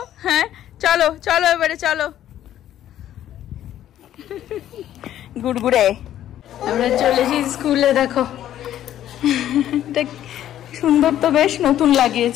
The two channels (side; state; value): right; quieter; 11.8 dB